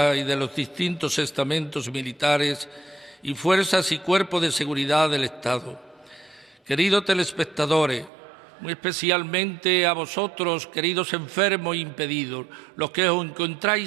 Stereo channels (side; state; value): left; drops out; at 8.1 s